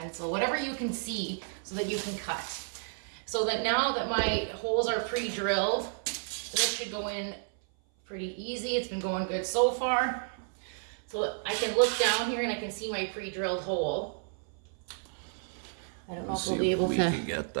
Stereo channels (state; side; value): silent; left; 57 dB below the other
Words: whatever you can see so that you can cut. So that now that my holes are pre-drilled, this should go in pretty easy. It's been going good so far. So I can look down here and I can see my pre-drilled hole. I don't know if we'll be able to. We can get